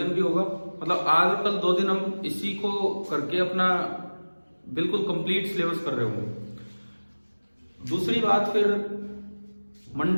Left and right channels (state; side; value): inverted; both; correlation -1.00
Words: भी होगा। मतलब आज और कल 2 दिन हम इसी को करके अपना बिल्कुल कंप्लीट सिलेबस कर रहे होंगे। दूसरी बात, फिर